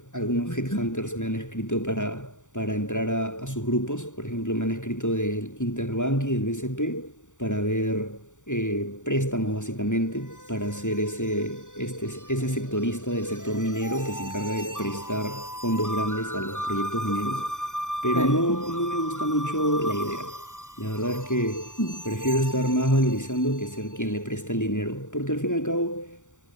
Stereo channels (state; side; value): late; right; 0.86 ms